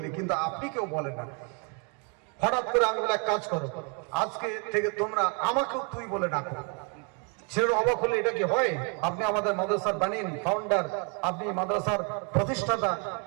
কিন্তু আপনি কেউ বলে না। হঠাৎ করে আমি বলে এক কাজ করো, আজকে থেকে তোমরা আমাকেও তুই বলে ডাকো। ছেলের অবাক হলে এটা কি হয়? আপনি আমাদের মাদ্রাসার বানিন ফাউন্ডার, আপনি মাদ্রাসার প্রতিষ্ঠাতা,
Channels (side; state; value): left; quieter; 36.7 dB